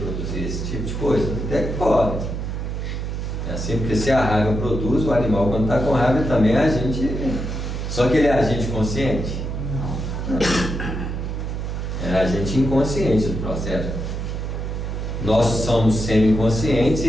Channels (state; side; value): noise; right; hum, 4 dB below the sound